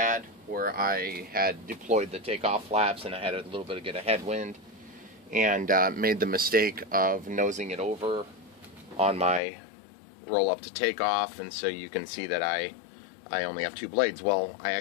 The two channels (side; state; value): right; drops out; at 9.4 s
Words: where I had deployed the takeoff flaps and I had a little bit of headwind and made the mistake of nosing it over on my roll up to takeoff, and so you can see that I only have 2 blades. Well, I